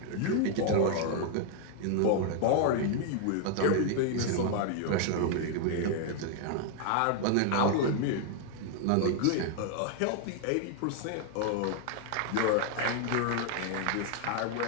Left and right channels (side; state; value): both; different; correlation 0.00